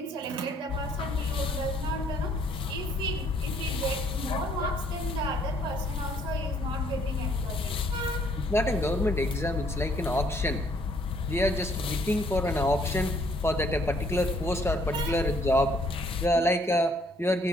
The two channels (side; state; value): both; normal; correlation 0.64